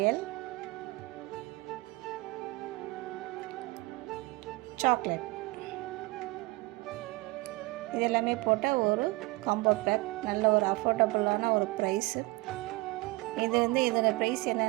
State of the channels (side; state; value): left; quieter; 22.2 dB